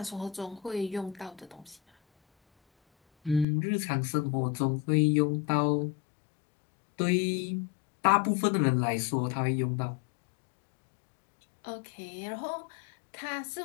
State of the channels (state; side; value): drops out; right; at 3.5 s